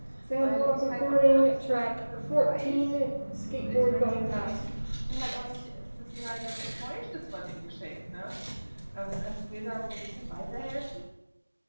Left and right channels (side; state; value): both; inverted; correlation -1.00